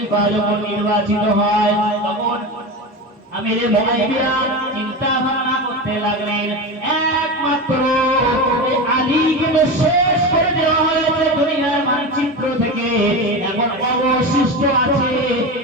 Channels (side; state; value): both; normal; correlation 0.23